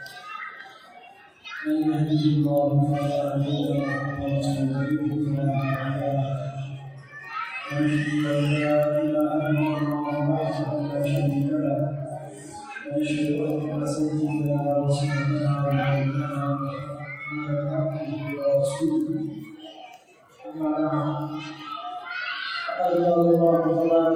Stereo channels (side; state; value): both; identical; correlation 1.00